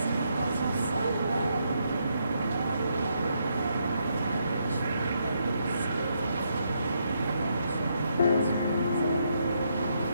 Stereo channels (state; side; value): inverted; both; correlation -0.77